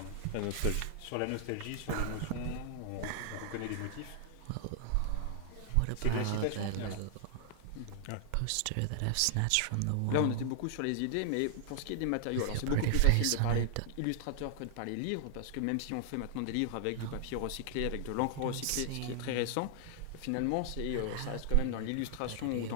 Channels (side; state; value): both; different; correlation 0.00